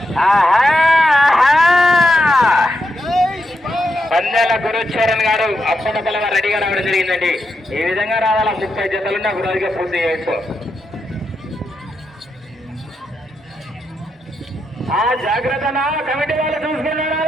పందాల గురుచరణ్ గారు అప్పటికల్లా రెడీగా రావడం జరిగిందండి. ఈ విధంగా రావాలా. 30 జతలున్నా ఒక రోజుగా పూర్తి చేయొచ్చు. జాగ్రత్తనా కమిటీ వాళ్ళు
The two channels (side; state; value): both; normal; correlation 0.84